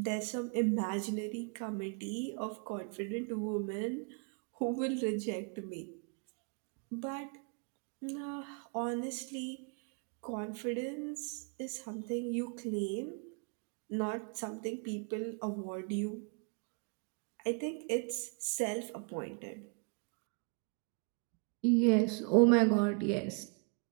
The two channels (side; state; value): left; quieter; 38.9 dB